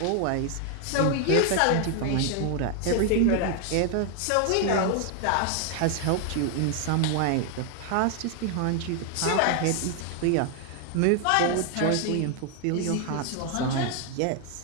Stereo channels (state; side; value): different; both; correlation 0.00